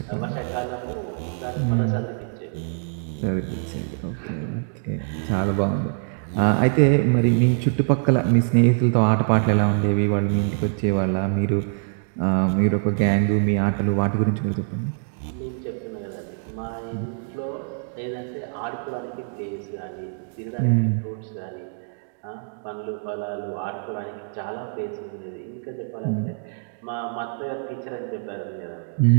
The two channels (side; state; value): left; silent; digital silence